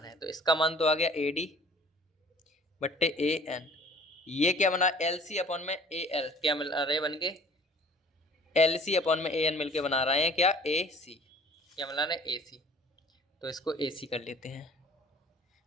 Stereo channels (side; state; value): both; normal; correlation 0.50